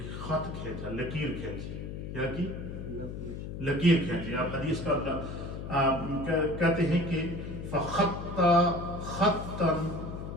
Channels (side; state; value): left; noise; hum, 7 dB below the sound